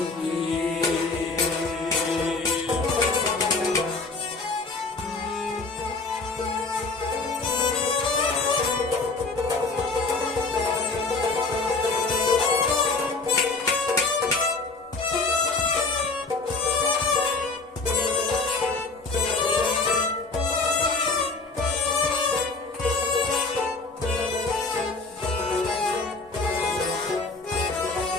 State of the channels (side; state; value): right; quieter; 3.8 dB